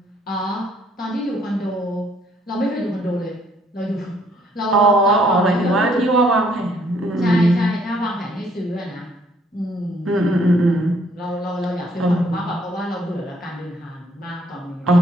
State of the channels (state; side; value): normal; both; correlation 0.66